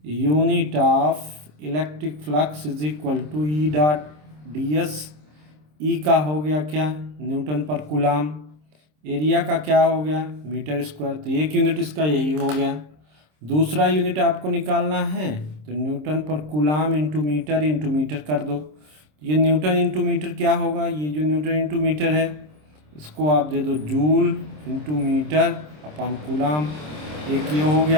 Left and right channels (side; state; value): left; late; 26 ms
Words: unit of electric flux is equal to E dot D S. E का हो गया क्या? न्यूटन पर कूलाम। एरिया का क्या हो गया? Metre square. तो एक यूनिट इसका यही हो गया। दूसरा यूनिट आपको निकालना है तो न्यूटन पर कूलाम इंटू मीटर कर दो। ये न्यूटन इंटू मीटर क्या होगा? ये जो न्यूटन इंटू मीटर है इसको आप दे दो joule into metre upon coulomb. एक ये हो